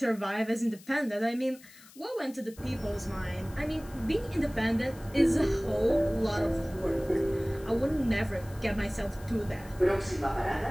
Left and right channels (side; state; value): left; noise; hiss, 22 dB below the sound